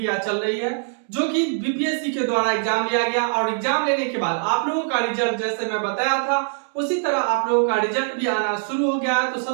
चल रही है, जो कि बीपीएससी के द्वारा एग्जाम लिया गया और एग्जाम लेने के बाद आप लोगों का रिजल्ट जैसे मैं बताया था उसी तरह आप लोगों का रिजल्ट भी आना शुरू हो गया है। तो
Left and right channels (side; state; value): left; silent; digital silence